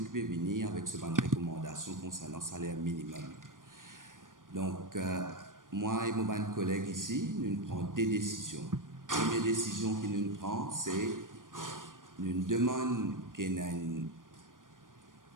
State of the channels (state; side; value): late; left; 0.89 ms